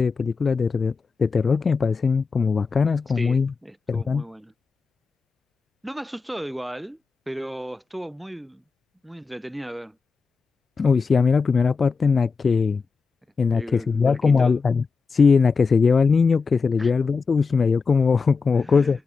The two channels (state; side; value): quieter; right; 4.8 dB